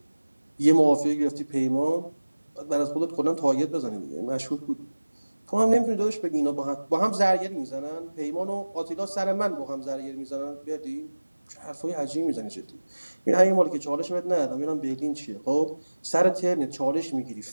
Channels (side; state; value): both; inverted; correlation -1.00